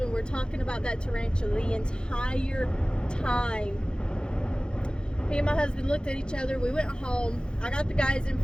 were talking about that tarantula the entire time. Me and my husband looked at each other. We went home. I got the guy's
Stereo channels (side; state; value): right; late; 0.049 ms